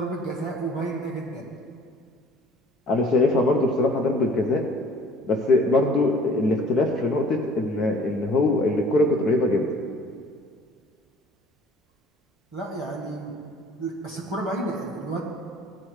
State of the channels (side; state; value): both; normal; correlation 0.52